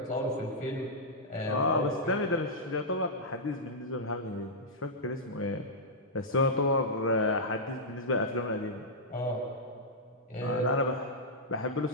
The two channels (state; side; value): normal; both; correlation -0.10